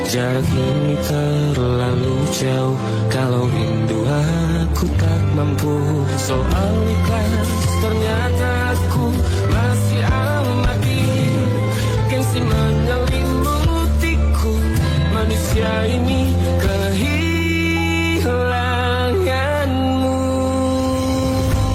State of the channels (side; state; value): both; identical; correlation 1.00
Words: Jarak ini terlalu jauh, kalau rindu aku tak mampu. Soal ikhlas ternyata aku masih amati, gengsi menyelimutiku. Manusia ini kehilanganmu.